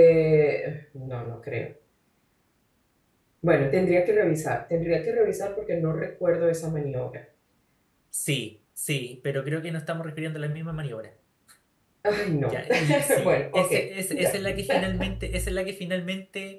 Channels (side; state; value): both; identical; correlation 1.00